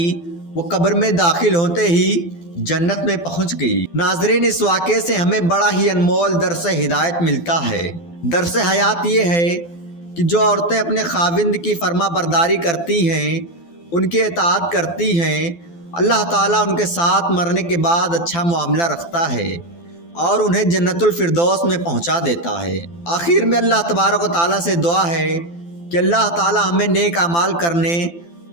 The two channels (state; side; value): late; right; 12 ms